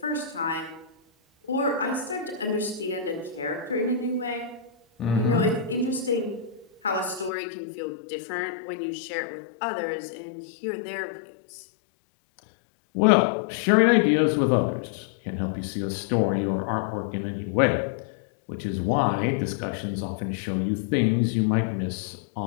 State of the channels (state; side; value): drops out; right; at 7.3 s